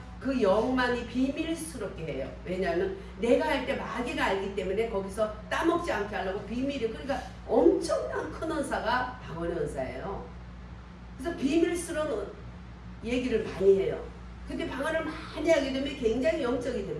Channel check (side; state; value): both; identical; correlation 1.00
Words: 그 영만이 비밀스럽게 해요. 왜냐하면 내가 할 때 마귀가 알기 때문에 거기서 따먹지 않게 하려고 비밀이, 그러니까 엄청난 큰 은사가 방언의 은사예요. 그래서 비밀스러운 얘기를 많이 해요. 근데 방언을 많이 하게 되면 굉장히 영적이